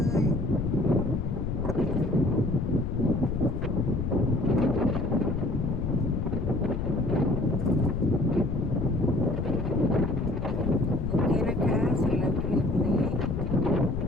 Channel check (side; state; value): left; noise; rumble, 1 dB below the sound